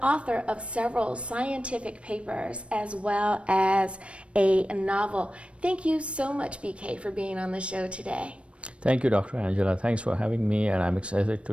author of several scientific papers as well as a novel. Thank you so much, BK, for being on the show today. Thank you, Dr. Angela. Thanks for having me, and I'm excited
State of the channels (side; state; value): left; late; 0.060 ms